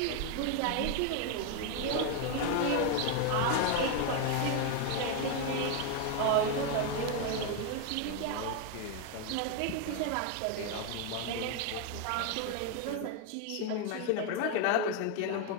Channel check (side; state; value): both; different; correlation 0.01